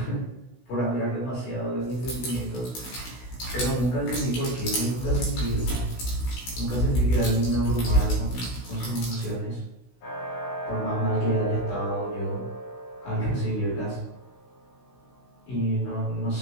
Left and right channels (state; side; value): late; right; 16 ms